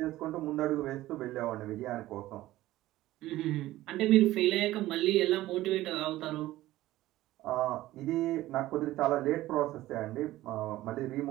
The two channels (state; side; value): quieter; left; 16.0 dB